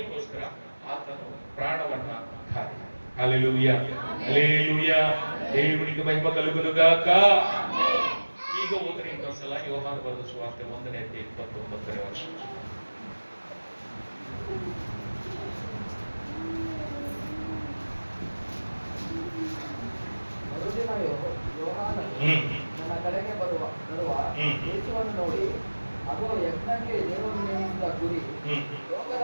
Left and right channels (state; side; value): inverted; both; correlation -1.00